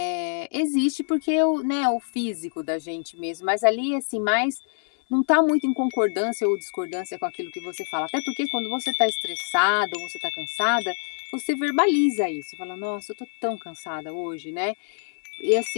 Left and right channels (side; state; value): right; silent; digital silence